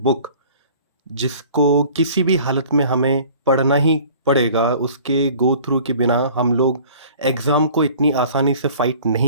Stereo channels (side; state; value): both; inverted; correlation -0.49